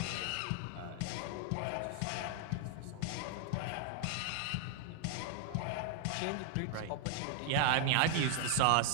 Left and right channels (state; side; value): different; both; correlation 0.00